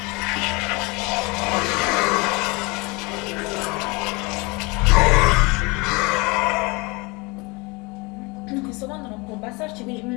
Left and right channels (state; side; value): quieter; right; 27.0 dB